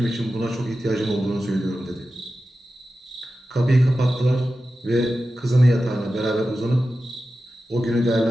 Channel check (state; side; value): normal; both; correlation 0.93